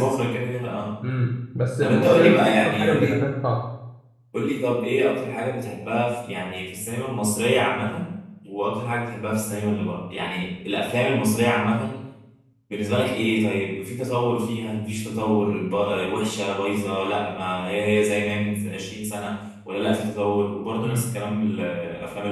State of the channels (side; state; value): both; identical; correlation 1.00